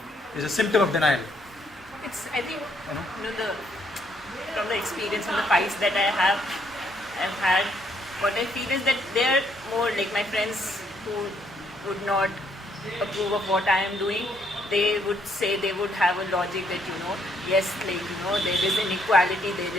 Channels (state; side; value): normal; both; correlation 0.70